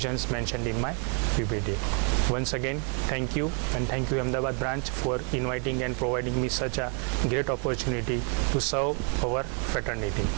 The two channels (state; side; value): quieter; left; 39.7 dB